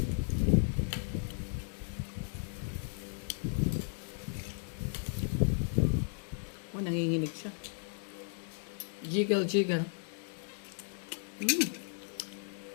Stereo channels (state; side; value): silent; right; 54 dB below the other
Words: Nanginginig siya. Jiggle, jiggle.